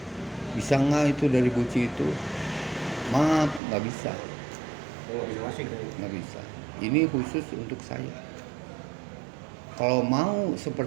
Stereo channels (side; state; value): left; drops out; at 3.6 s